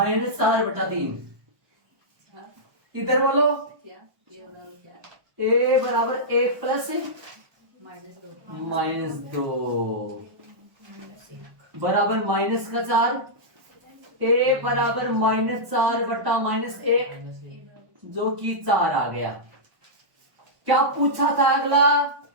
इधर बोलो, ए बराबर 1 प्लस -2 बराबर माइनस का 4। ए बराबर -4/-1, जो कि 4 आ गया। क्या पूछा था अगला?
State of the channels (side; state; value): left; late; 1.1 ms